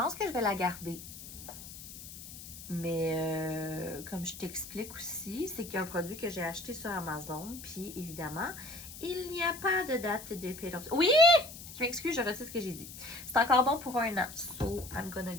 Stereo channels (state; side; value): noise; left; hiss, 13 dB below the sound